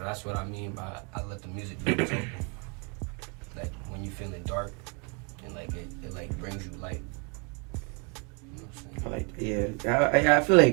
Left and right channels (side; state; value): left; quieter; 34.4 dB